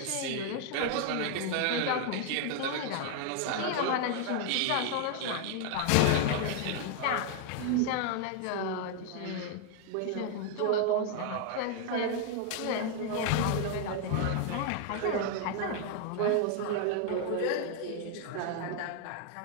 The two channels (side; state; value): both; different; correlation 0.00